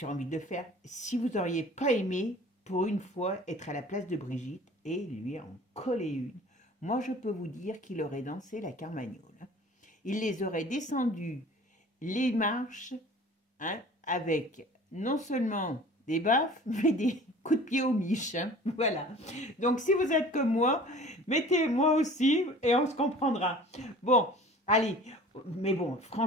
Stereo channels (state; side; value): normal; both; correlation 0.45